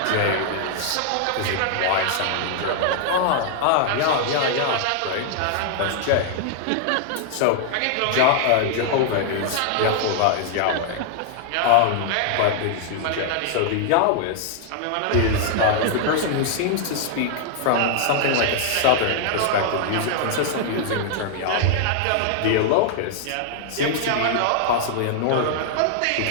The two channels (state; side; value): different; both; correlation -0.01